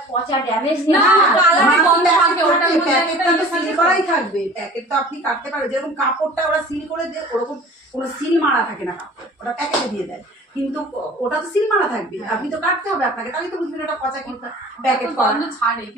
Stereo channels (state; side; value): normal; both; correlation 0.44